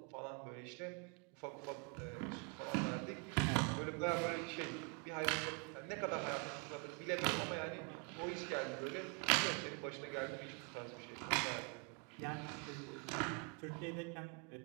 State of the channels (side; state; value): left; quieter; 32.8 dB